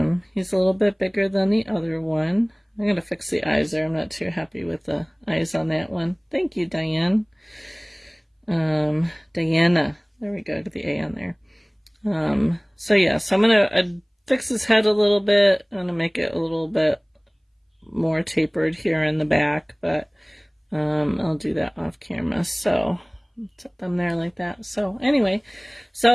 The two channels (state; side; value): identical; both; correlation 1.00